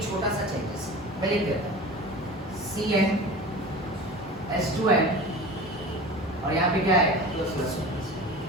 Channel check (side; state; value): both; normal; correlation 0.35